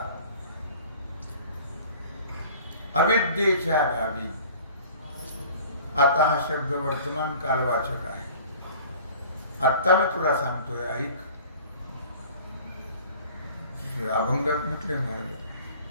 अविद्येच्या गावी, आता हा शब्द वर्तमान कालवाचक आहे. आत्ता मी तुला सांगतोय, ऐक. अभंगात म्हटले महाराज,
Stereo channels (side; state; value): both; inverted; correlation -0.47